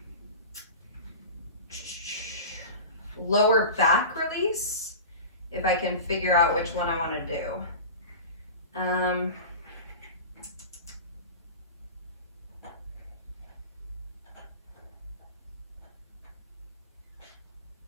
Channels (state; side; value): inverted; both; correlation -0.32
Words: lower back release, if I can figure out which one I want to do.